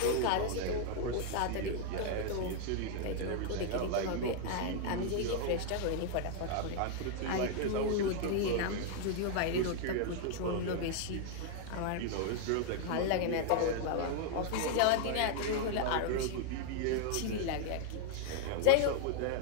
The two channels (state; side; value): different; both; correlation 0.00